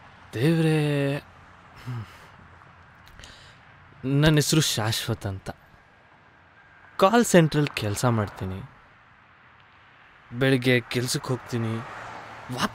ದೇವ್ರೇ, ನನ್ನ ಹೆಸರು ಶಾಶ್ವತ್ ಅಂತ. ಕಾಲ್ ಸೆಂಟ್ರಲ್ಲಿ ಕೆಲಸ ಮಾಡ್ತೀನಿ. ಬೆಳಿಗ್ಗೆ ಕೆಲ್ಸಕ್ಕೆ ಹೋಗ್ತೀನಿ,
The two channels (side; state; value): both; identical; correlation 1.00